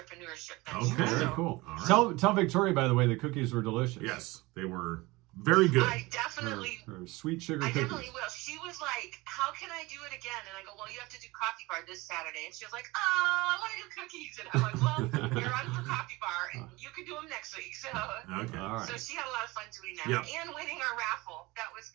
venture. Okay. Very So cool. All right. Tell Victoria, by the way, the cookies were delicious. Yes, they were very good. I definitely. Or sweet sugar I cookies. definitely will. She was like, how can I do it again? And I go, well, you have to do coffee bar this Saturday. And she was like, oh, I want to do cookies. And I'm like, well, you're on for coffee bar, and you can do them next week. So, Okay. All right. so she had a lot of fun doing that. Yeah. And winning our raffle. That was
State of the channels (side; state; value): left; quieter; 22.2 dB